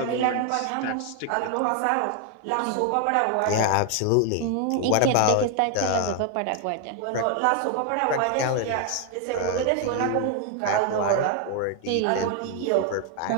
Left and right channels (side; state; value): both; different; correlation 0.01